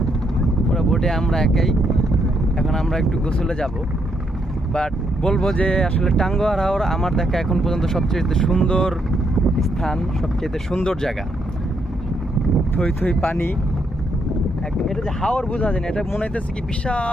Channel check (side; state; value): both; normal; correlation 0.76